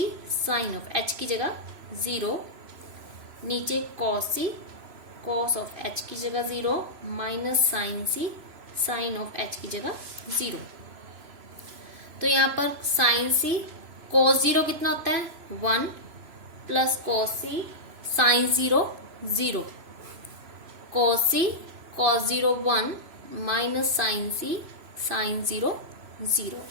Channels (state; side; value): late; left; 3.0 ms